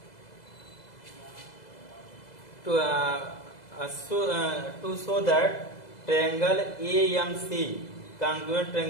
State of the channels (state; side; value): late; right; 2.0 ms